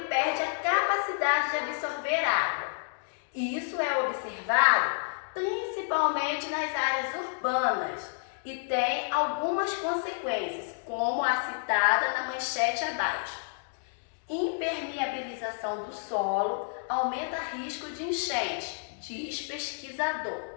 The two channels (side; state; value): right; silent; digital silence